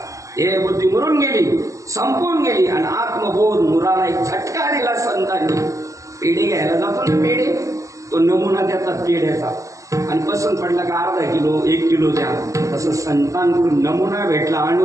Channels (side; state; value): left; late; 0.16 ms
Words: हे बुद्धी मुरून गेली, संपून गेली, आणि आत्मबोध मुराला एक झटका दिला संतांनी. पेढे घ्यायला जातो ना, पेढे, तो नमुना देतात पेढ्याचा, आणि पसंत पडला का अर्धा किलो 1 किलो द्या. तसं संतांकडून नमुना भेटला